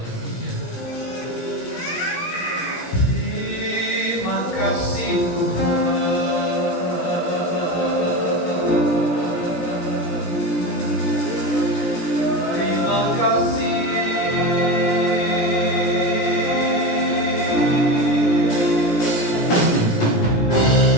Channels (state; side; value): late; right; 17 ms